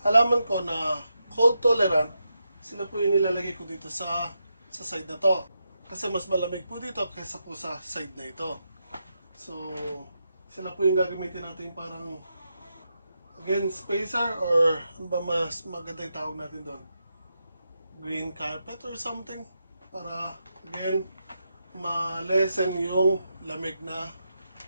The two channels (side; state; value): both; inverted; correlation -0.85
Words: halaman ko na cold tolerant, sila po yung nilalagay ko dito sa side na to. Kasi mas malamig po dito kaysa po sa side na ito. So, sila po yung gagamitin natin parang again, spacer or ano ba mas maganda yung tawag natin doon? Green carpet or something para again ma-lessen yung lamig na